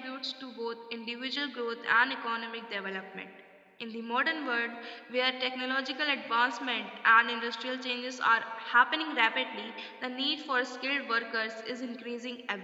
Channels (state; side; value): identical; both; correlation 1.00